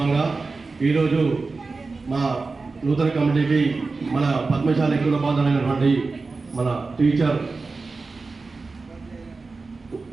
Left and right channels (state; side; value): quieter; left; 4.0 dB